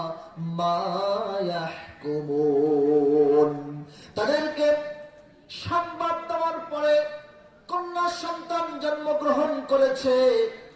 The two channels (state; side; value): identical; both; correlation 1.00